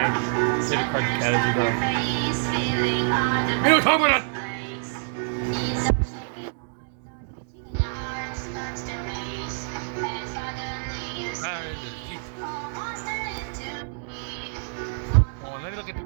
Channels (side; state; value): left; silent; digital silence